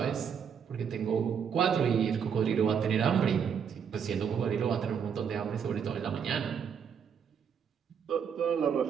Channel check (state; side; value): quieter; left; 7.4 dB